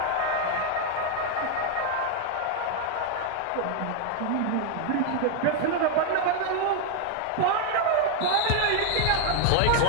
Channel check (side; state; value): both; different; correlation 0.00